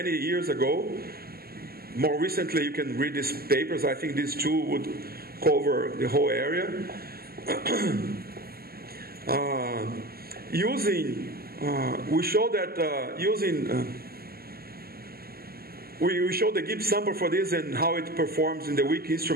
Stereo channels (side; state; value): left; late; 0.45 ms